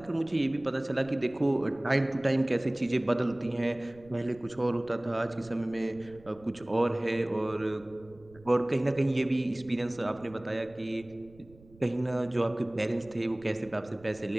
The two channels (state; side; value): noise; right; rumble, 24 dB below the sound